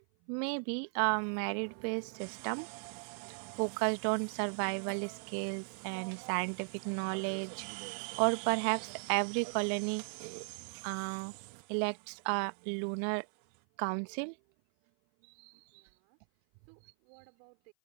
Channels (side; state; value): left; silent; 53 dB below the other